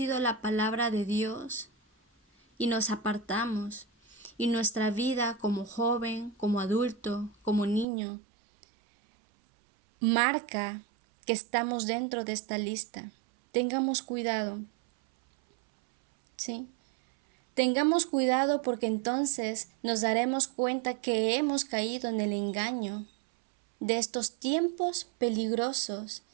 la palabra de Dios y nos apartamos, y nuestra vida como joven, como adulto, como niño, marca que estamos dentro de esta lista. Tengamos cuidado, ¿sí? Tengamos cuidado porque entonces nos daremos cuenta que hemos caído en el engaño de estos tiempos peligrosos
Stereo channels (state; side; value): drops out; left; at 7.9 s